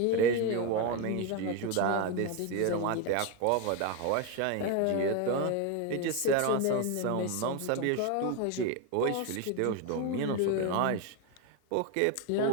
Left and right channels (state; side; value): different; both; correlation 0.02